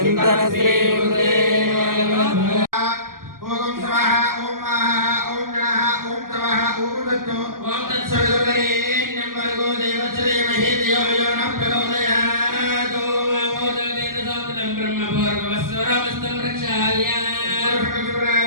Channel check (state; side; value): late; left; 0.91 ms